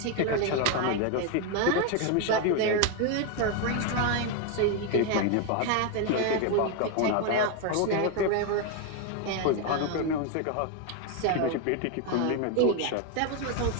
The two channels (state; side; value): different; both; correlation 0.01